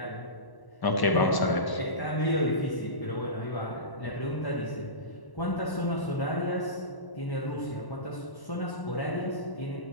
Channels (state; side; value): late; right; 1.0 ms